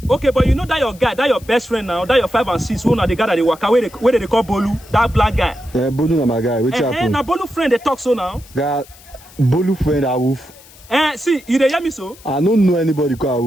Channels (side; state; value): left; noise; hiss, 23 dB below the sound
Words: Okay, but you know that your guy, that your best friend now, that your 5 and 6, who now the guy that they work where they call Bolu, that black guy. Bolu na my guy. What happened? Now Bolu friend they talk so now. Guy, Bolu friend Awoof. See, you dey hear me so? I don't know anybody